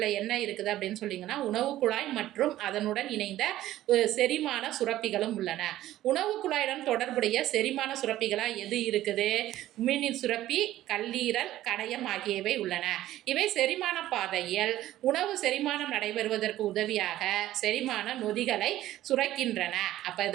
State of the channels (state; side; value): quieter; left; 14.3 dB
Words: என்ன இருக்குது அப்படின்னு சொல்லிங்கன்னா உணவு குழாய் மற்றும் அதனுடன் இணைந்த செரிமான சுரப்பிகளும் உள்ளன. உணவு குழாயுடன் தொடர்புடைய செரிமான சுரப்பிகளாக எது இருக்குது? உமிழ்நீர் சுரப்பி, கல்லீரல், கணையம் ஆகியவை உள்ளன. இவை செரிமான பாதையில் உணவு செரிமானம் நடைபெறுவதற்கு உதவியாக செரிமான நொதிகளை சுரக்கின்றன. அப்போ